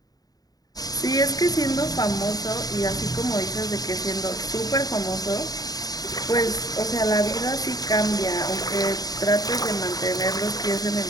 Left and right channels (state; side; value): late; right; 0.18 ms